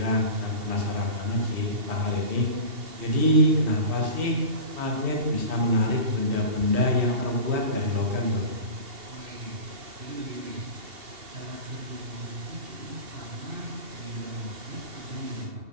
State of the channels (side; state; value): left; late; 2.7 ms